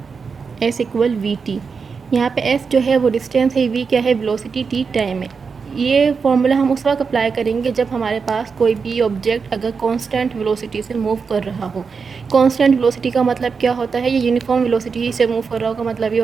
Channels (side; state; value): left; quieter; 5.4 dB